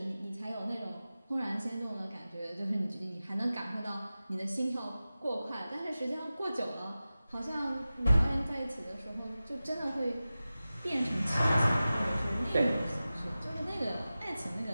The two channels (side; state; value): both; inverted; correlation -0.95